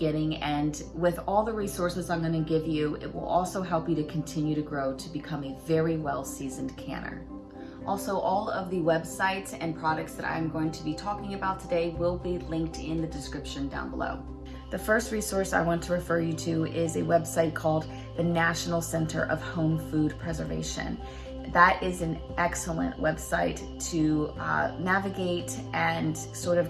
And with all the resources I'm going to give you, it will also help you to continue to grow to become a very well-seasoned canner. Also, all of the websites and products that I'm going to be talking about today will be linked in the description down below. The first resource I want to refer you to is a website called the National Center of Home Food Preservation. That is an excellent website to navigate and sort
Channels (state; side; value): identical; both; correlation 1.00